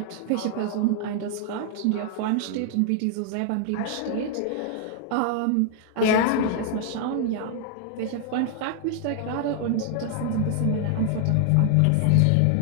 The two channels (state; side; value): different; both; correlation 0.00